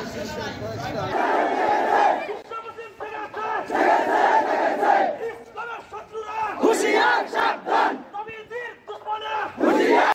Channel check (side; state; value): both; identical; correlation 1.00